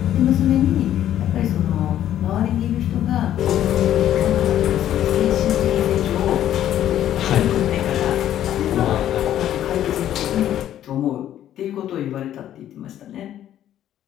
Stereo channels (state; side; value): quieter; right; 11.5 dB